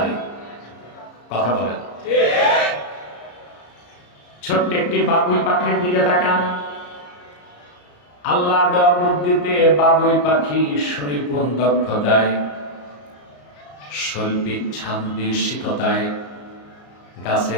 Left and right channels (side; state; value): right; late; 34 ms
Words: কথা বলে না। ছোট্ট একটি বাবুই পাখির দিকে তাকান। আল্লাহ দেওয়া বুদ্ধিতে বাবুই পাখি সুনিপুণ দক্ষতায়, শৈল্পিক ছান্দিশিকতায়